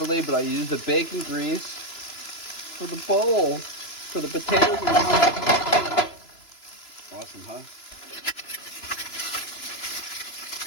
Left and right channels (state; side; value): late; right; 2.9 ms